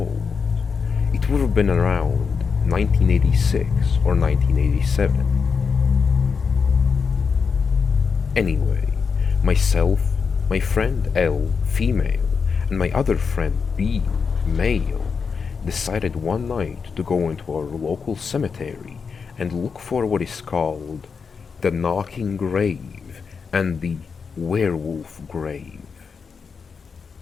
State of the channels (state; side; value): quieter; right; 5.6 dB